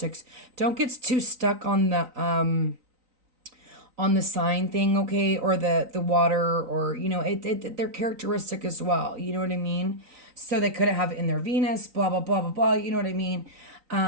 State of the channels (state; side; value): late; left; 3.9 ms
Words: Don't get too stuck on the on the sign thing, okay, or the water, or you know, they're characteristic as well. You know what I mean? So they couldn't have it in their Venus, blah blah blah blah blah. You know what I mean?